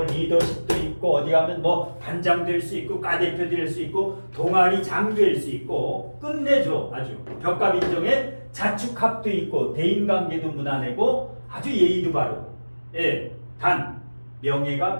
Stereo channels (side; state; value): both; inverted; correlation -1.00